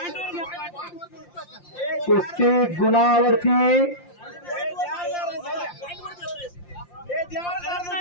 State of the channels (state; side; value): late; right; 5.7 ms